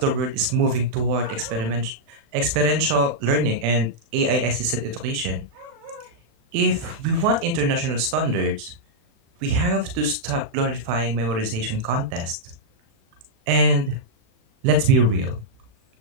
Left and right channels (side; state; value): left; late; 36 ms